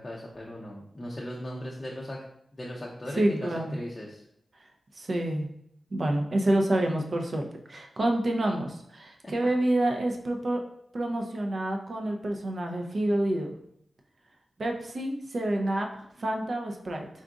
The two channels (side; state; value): both; normal; correlation 0.95